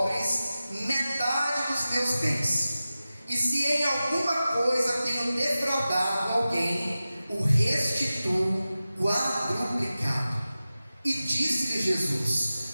metade dos meus bens, e se em alguma coisa tenho defraudado alguém, o restituo quadruplicado. E disse-lhe Jesus:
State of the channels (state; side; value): inverted; both; correlation -0.95